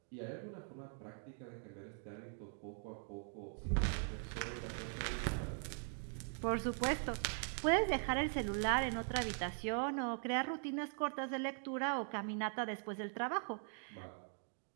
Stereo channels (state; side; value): silent; left; 50 dB below the other